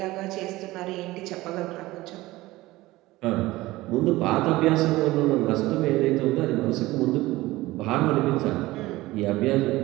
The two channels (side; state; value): left; quieter; 18.6 dB